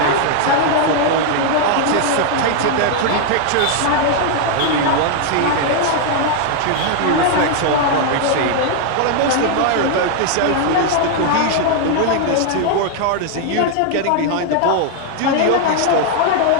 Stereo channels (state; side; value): different; both; correlation 0.00